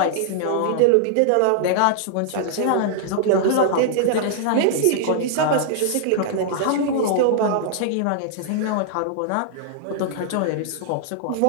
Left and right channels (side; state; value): both; different; correlation -0.01